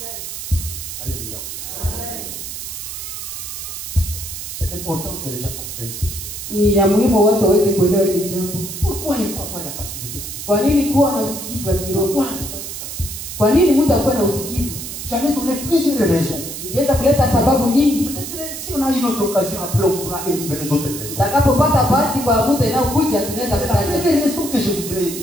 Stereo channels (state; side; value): noise; right; hiss, 8 dB below the sound